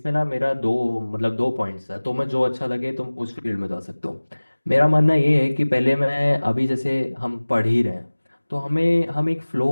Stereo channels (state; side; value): inverted; both; correlation -1.00